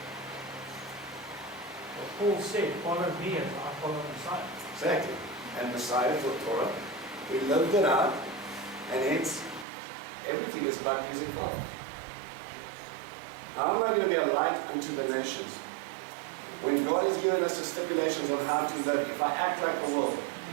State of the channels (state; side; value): drops out; left; at 9.7 s